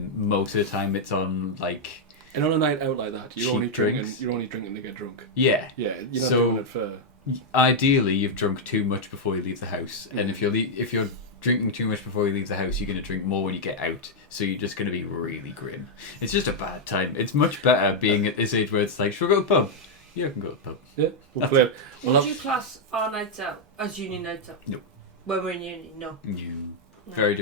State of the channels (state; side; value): normal; both; correlation -0.02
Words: Most of the time it's on like... And on a night out like that, you're only drinks. You're only drinking to get drunk. Yeah. Yeah. You're not So doing it for... ideally, you've drunk too much before you leave the house, and if you're drinking too much before you leave the house, you're going to drink more when you get out. So you're just going to be really grim. It's just a bad time. It's much better being at this age where it's like, should we go to the pub? Yeah, I can go to the pub. Yeah. We'll play. Would you class our nights out as uni nights out? No. When we're in uni, no. Very